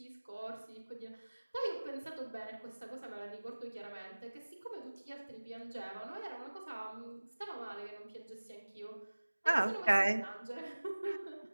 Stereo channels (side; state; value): both; inverted; correlation -1.00